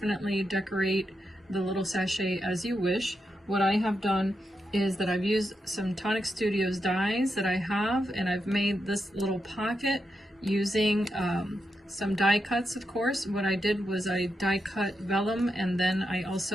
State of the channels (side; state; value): both; normal; correlation 0.86